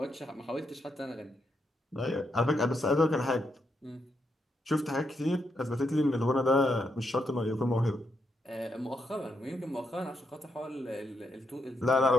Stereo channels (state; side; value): normal; both; correlation 0.81